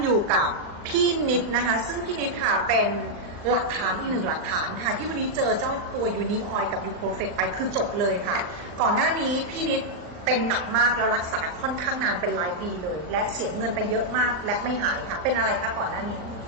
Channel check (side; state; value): left; late; 39 ms